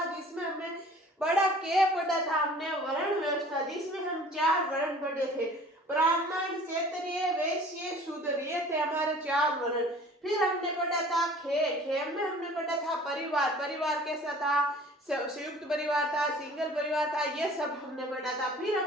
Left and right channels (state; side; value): normal; both; correlation 0.48